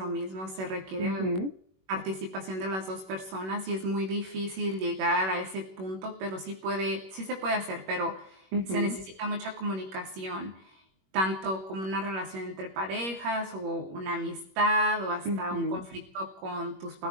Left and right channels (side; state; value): left; late; 21 ms